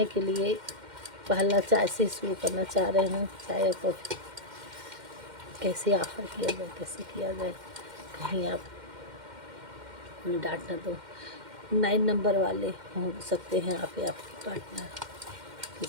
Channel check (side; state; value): left; late; 2.1 ms